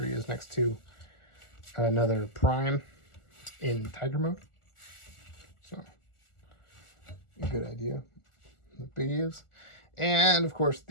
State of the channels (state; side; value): late; right; 1.4 ms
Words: he is next to another Prime in Tiger mode. So, good idea. The big is. And, of course,